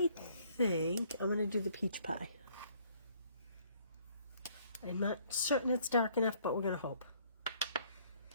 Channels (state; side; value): inverted; both; correlation -0.62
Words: going to do the peach pie. I'm not certain it's dark enough, but we're going to hope.